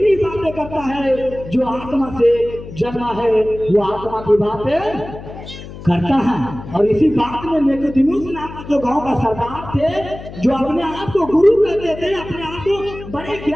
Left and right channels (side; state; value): left; noise; hum, 13 dB below the sound